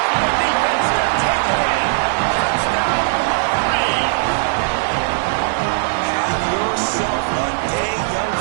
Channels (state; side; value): silent; left; digital silence